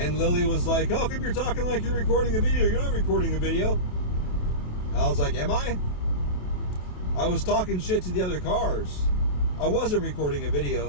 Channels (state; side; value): late; right; 28 ms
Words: Lily was like, how come you're talking like you're recording a video? You're not recording a video. And I was like, am I? I was talking shit to the other cars. I wasn't recording a